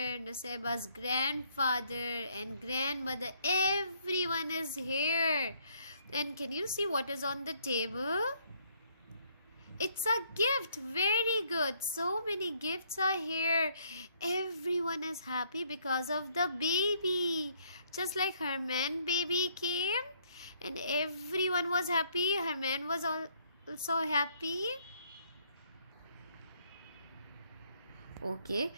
Nusaybah's grandfather and grandmother. Everyone is here. And can you see what is on the table? It's a gift. Very good. So many gifts are here. Everyone is happy because of the baby. Just like Herman baby came and everyone was happy. Herman was also happy. Okay,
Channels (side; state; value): both; inverted; correlation -0.67